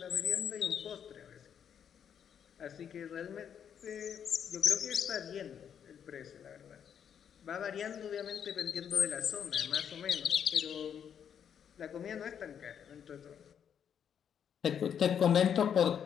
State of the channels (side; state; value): right; quieter; 8.3 dB